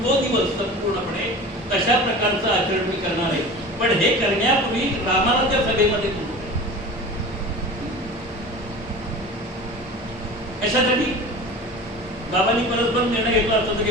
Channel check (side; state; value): both; normal; correlation 0.36